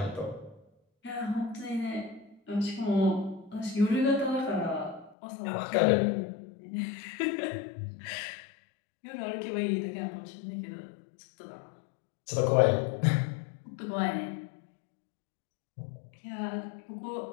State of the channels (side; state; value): right; drops out; at 5.2 s